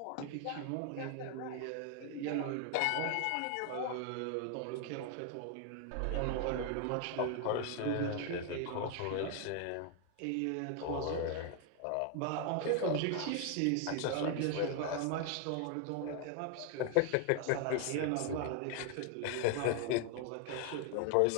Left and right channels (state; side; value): different; both; correlation 0.00